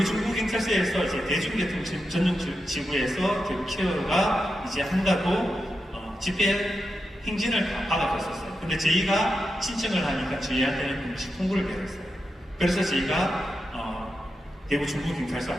중부경찰서에서 이제 대중교통 전용 지구에서 대구 키어가 이제 한다고 집회 행진을 다 받아갔었어요. 근데 저희가 신청을 하니까 저희한테는 공식 통보를 받았어요. 그래서 저희가 대구 중부경찰서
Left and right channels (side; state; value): both; normal; correlation 0.88